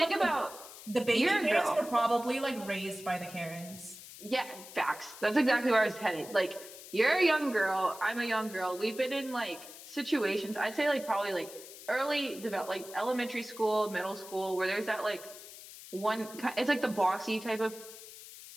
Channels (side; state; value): left; noise; hiss, 15 dB below the sound